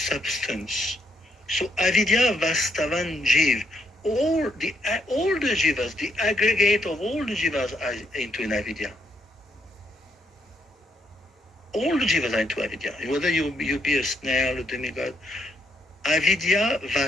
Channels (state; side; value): normal; both; correlation 0.75